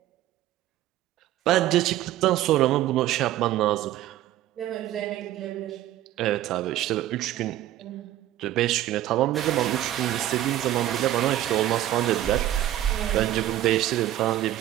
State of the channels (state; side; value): quieter; left; 13.6 dB